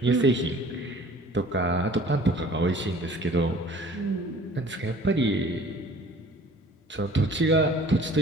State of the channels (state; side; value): normal; both; correlation 0.49